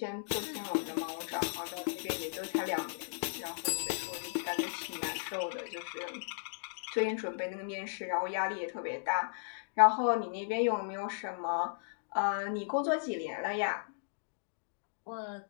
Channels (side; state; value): right; silent; digital silence